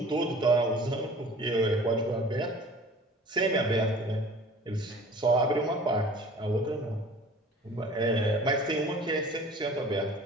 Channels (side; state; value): both; normal; correlation 0.45